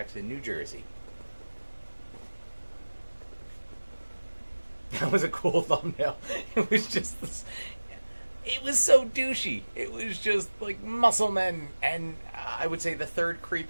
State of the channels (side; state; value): both; inverted; correlation -1.00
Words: New Jersey. That was a cool thumbnail. It was just this, it was so douchey. It was just like muscle men. And I would say the third